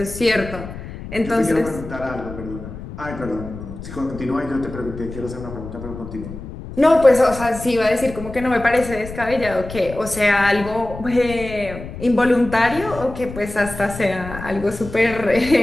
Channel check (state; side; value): noise; left; rumble, 11 dB below the sound